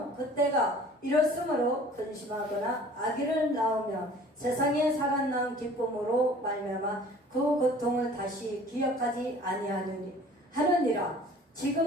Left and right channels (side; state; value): both; normal; correlation 0.49